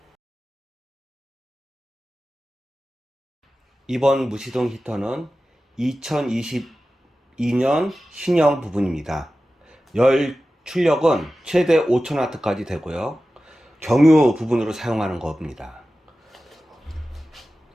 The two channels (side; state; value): both; normal; correlation 0.94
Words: 이번 무시동 히터는 2022년 신형 부분입니다. 열 출력은 최대 5000W까지 되고요. 경유 부분으로 사용하는 겁니다.